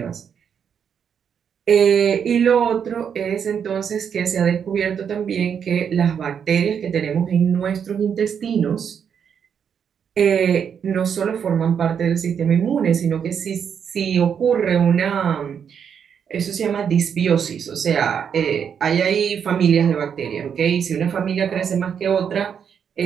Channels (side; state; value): left; quieter; 7.5 dB